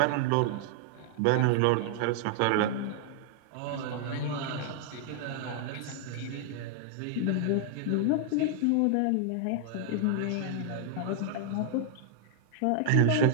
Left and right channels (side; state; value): both; different; correlation -0.01